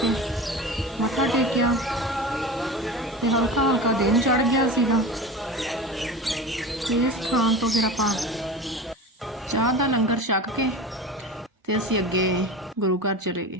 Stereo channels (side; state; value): both; normal; correlation 0.31